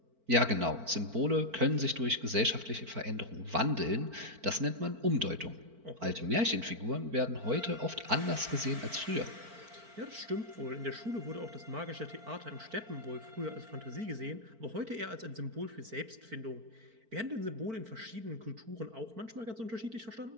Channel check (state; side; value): late; left; 4.5 ms